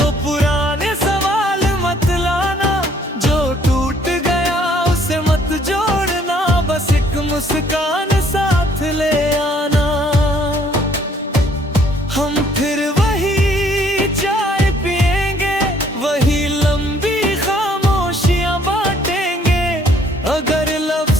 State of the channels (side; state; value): both; normal; correlation 0.62